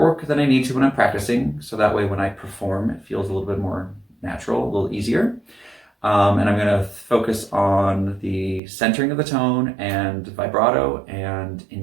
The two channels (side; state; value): left; drops out; at 8.6 s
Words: than I need to when I'm practicing. So that way when I perform, it feels a little bit more natural, a little easier. And I'm going to focus on the centering of the tone and vibrato and